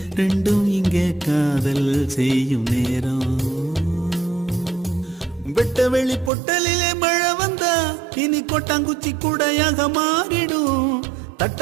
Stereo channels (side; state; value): left; drops out; at 6.3 s